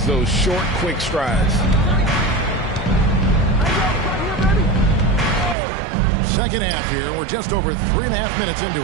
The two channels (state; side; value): drops out; left; at 5.6 s